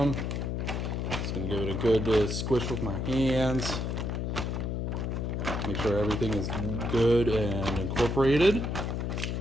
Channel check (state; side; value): noise; left; hum, 1 dB below the sound